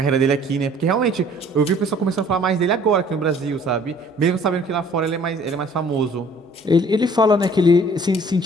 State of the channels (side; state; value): both; normal; correlation 0.55